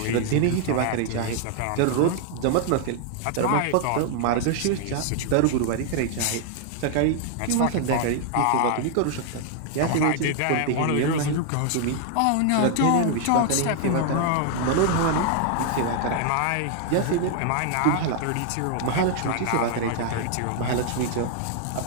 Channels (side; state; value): both; different; correlation 0.00